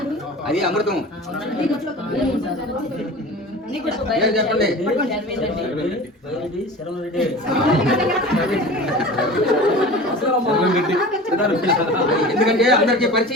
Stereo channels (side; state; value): both; normal; correlation 0.37